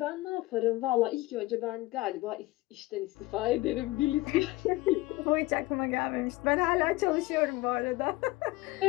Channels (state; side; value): quieter; right; 19.8 dB